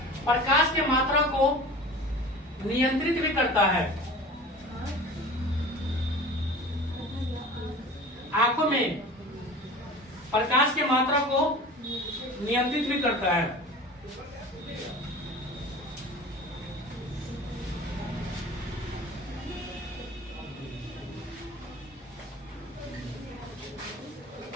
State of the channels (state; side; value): normal; both; correlation 0.38